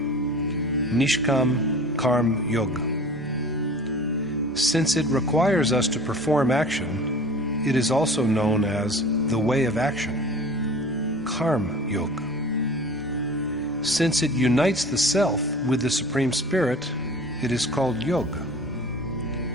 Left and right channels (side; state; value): both; normal; correlation 0.41